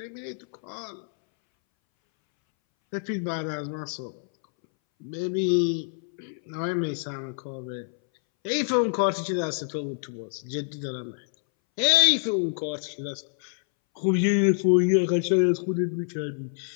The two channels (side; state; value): right; silent; 60 dB below the other